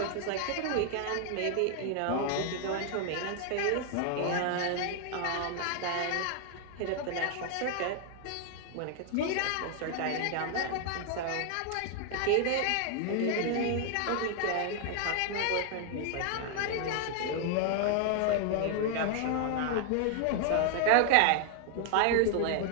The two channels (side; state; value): both; different; correlation 0.00